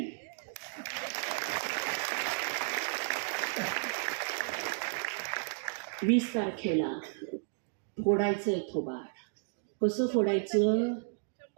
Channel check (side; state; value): left; silent; digital silence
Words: वीस तारखेला फोडायचंय थोबाड. कसं फोडायचं?